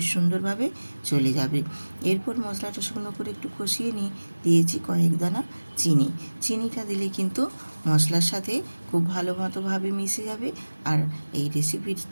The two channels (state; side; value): inverted; both; correlation -1.00